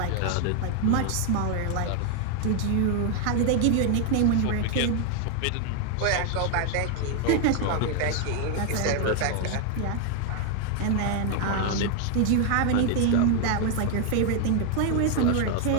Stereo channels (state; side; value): different; both; correlation 0.00